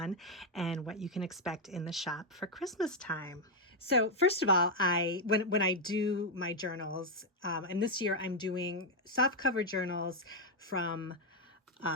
and what you can expect in the shop for Christmas time. So first of all, when I do my journals, and this year I'm doing soft cover journals from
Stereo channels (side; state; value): both; normal; correlation 0.02